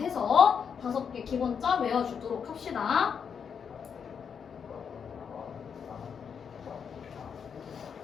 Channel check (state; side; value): quieter; right; 6.9 dB